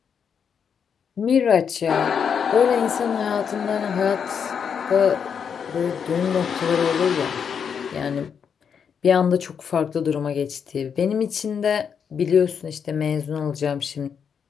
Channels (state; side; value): quieter; right; 7.1 dB